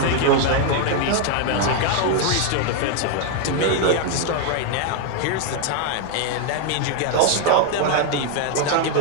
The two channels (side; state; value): both; different; correlation 0.01